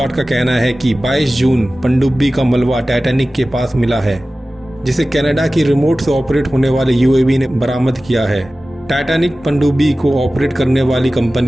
का कहना है कि 22 जून पनडुब्बी का मलबा टाइटैनिक के पास मिला है, जिसे कनाडा की रिमोट से ऑपरेट होने वाले यूएवी ने बरामद किया है। टाइटैनिक पनडुब्बी को ऑपरेट करने वाली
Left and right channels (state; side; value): normal; both; correlation 0.96